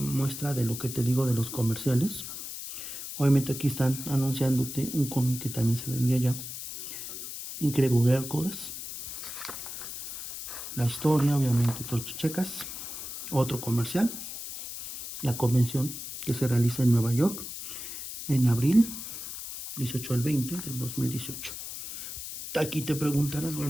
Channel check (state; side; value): noise; left; hiss, 8 dB below the sound